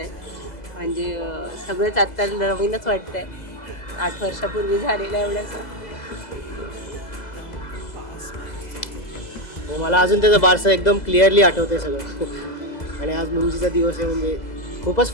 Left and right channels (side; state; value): right; late; 2.0 ms